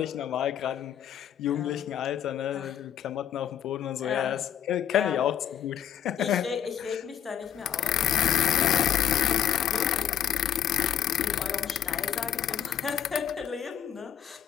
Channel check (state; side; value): quieter; right; 9.7 dB